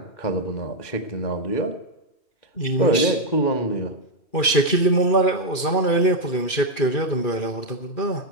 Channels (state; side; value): late; right; 2.4 ms